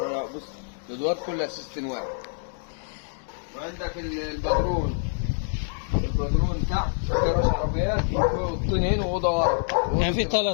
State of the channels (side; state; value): right; silent; 60 dB below the other